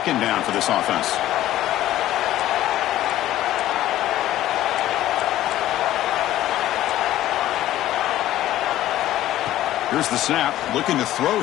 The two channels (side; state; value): right; quieter; 13.9 dB